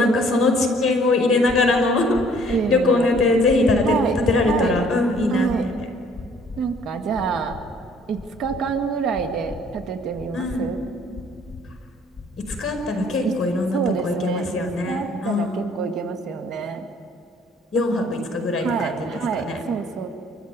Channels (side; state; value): both; normal; correlation 0.58